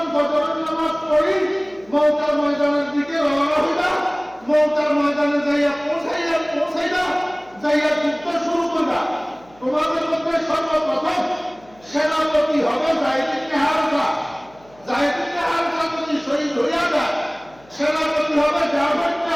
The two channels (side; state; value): left; noise; hum, 28 dB below the sound